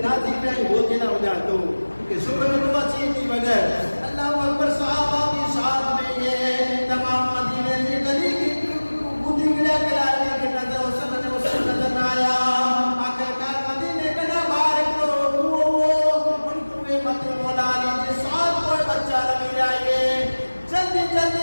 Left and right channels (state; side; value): inverted; both; correlation -1.00